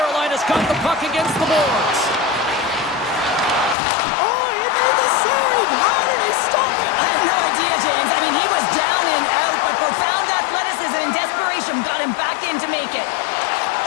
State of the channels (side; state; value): right; drops out; at 3.8 s